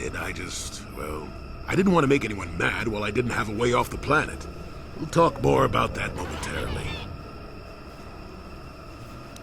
I didn't want to make anyone mad while I didn't have a way off the planet. We'll talk more about that momentarily.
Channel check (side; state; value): both; identical; correlation 1.00